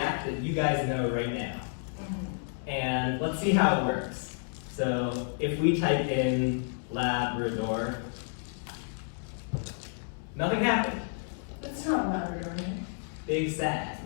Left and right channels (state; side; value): silent; right; digital silence